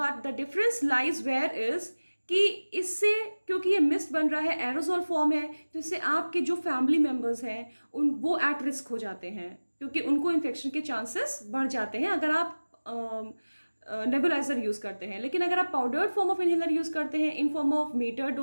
the difference lies where is कि इससे क्योंकि ये मिस्ट बन रहा है, एरोजोल फॉर्म है, तो इससे आपके जो फैमिली मेम्बर्स हैं वो एट रिस्क हो जाते हैं, क्योंकि उनको इन्फेक्शन के चांसेस बढ़ जाते हैं अगर आप नेबुलाइजर यूज करते हैं। लेकिन अगर आप powdered form of inhaler use करते हैं in form of meter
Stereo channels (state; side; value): inverted; both; correlation -1.00